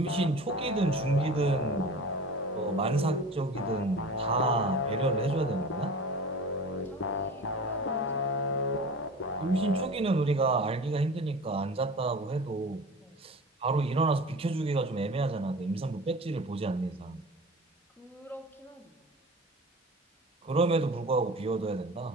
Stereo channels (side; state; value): both; normal; correlation 0.37